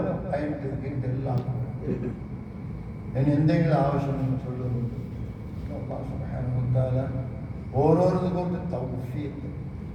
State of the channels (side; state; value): both; identical; correlation 1.00